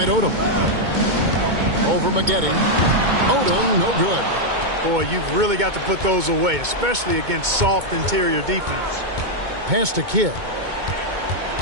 Odom. Over Maggette. Odom, no good. Boy, you've really got to put those away, especially against soft interior defense. Pass to Kidd.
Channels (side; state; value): left; late; 2.2 ms